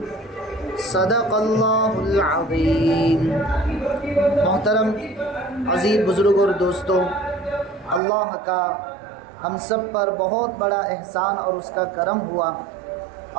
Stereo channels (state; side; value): drops out; left; at 8.0 s